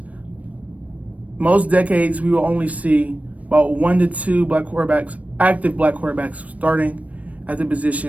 Most decades, we will only see about 1 to 2 black quarterbacks, active black quarterbacks, starting at the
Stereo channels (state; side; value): late; left; 0.068 ms